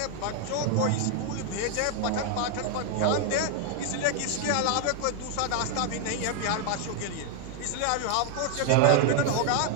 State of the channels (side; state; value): both; different; correlation 0.00